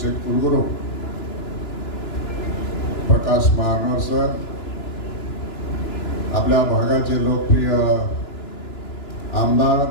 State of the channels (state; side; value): late; right; 2.9 ms